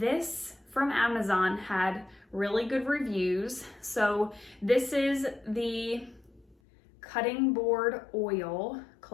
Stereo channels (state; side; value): drops out; right; at 6.6 s